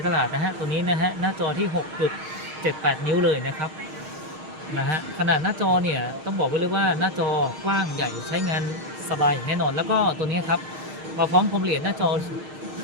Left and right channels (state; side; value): late; left; 6.5 ms